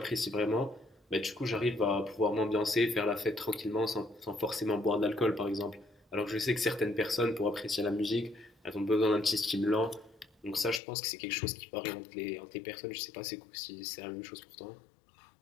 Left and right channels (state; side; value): drops out; right; at 10.8 s